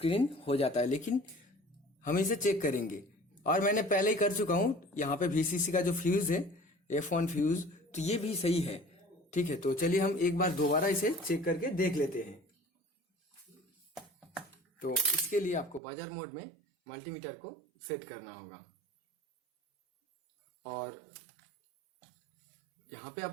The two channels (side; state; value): left; drops out; at 15.8 s